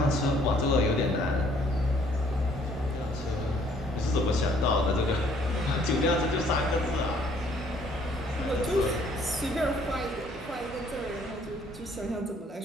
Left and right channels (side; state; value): both; normal; correlation 0.62